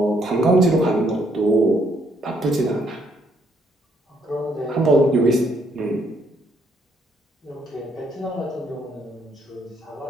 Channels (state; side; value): normal; both; correlation 0.70